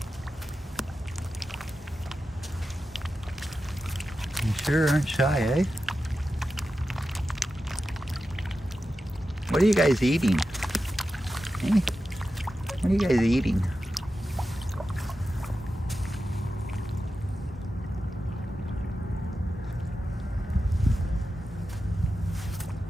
You sure aren't shy, eh? What are you guys eating? Hey? What are you guys eating?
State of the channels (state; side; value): normal; both; correlation 0.91